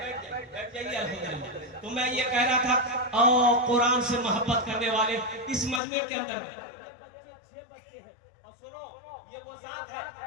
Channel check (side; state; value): right; drops out; at 5.8 s